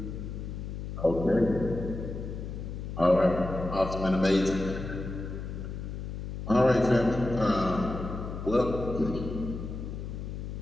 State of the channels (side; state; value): left; noise; hum, 7 dB below the sound